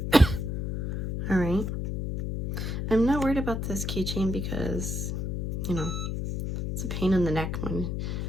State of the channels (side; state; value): left; noise; hum, 2 dB below the sound